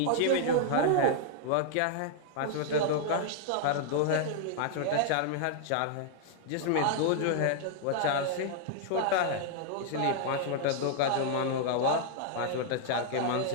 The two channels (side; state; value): both; different; correlation -0.01